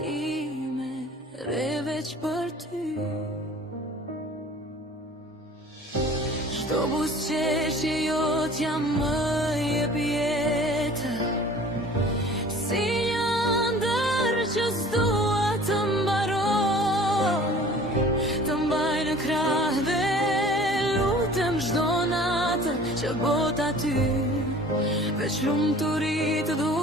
ime re veç për ty. Çdo buzëqeshje jot jam më jep jetë, si një ëndër që s'dua të mbaroj, të mbaj në krah dhe lutem çdo natë që bota ty veç lumturi të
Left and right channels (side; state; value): both; normal; correlation 0.47